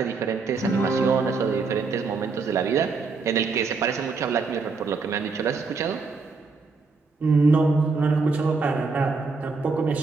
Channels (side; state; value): left; quieter; 4.4 dB